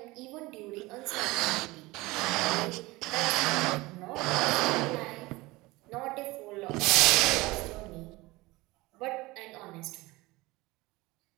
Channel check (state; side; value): quieter; left; 21.3 dB